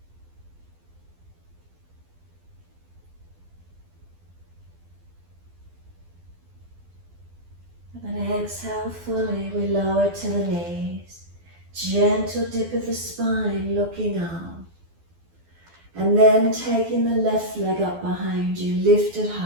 And then exhale fully, we lower to the knees. Gentle dip of the spine, looking up. And then taking the left leg up behind you, lift it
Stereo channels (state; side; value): late; left; 12 ms